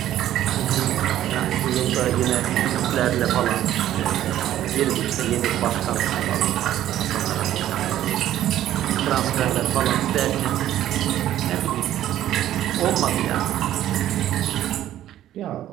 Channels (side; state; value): left; quieter; 12.6 dB